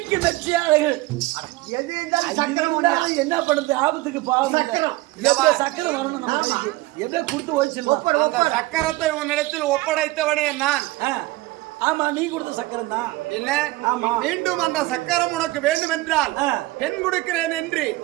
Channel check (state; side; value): quieter; left; 19.6 dB